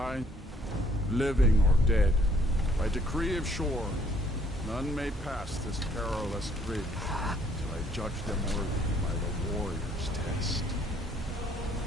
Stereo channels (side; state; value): both; normal; correlation 0.64